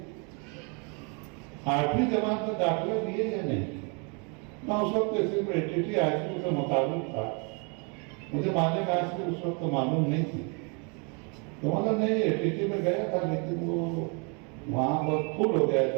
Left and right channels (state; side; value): quieter; left; 35.0 dB